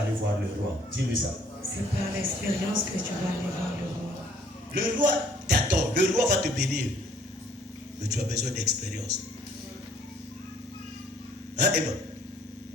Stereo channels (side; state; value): both; normal; correlation 0.61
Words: aller voir le roi. Dis-lui ça. C'est par l'expérience que tu vas aller voir le roi. Le roi t'attend, le roi va te bénir. Mais tu as besoin d'expérience. Hein, Emma?